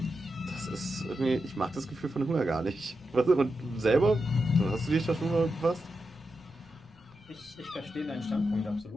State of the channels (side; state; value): left; noise; rumble, 27 dB below the sound